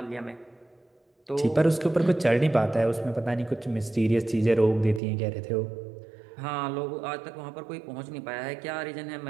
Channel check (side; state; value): left; drops out; at 5.0 s